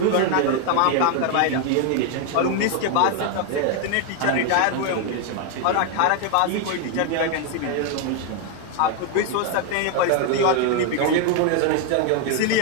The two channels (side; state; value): both; different; correlation 0.01